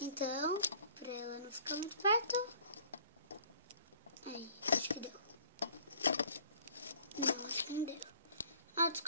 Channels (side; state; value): both; inverted; correlation -0.53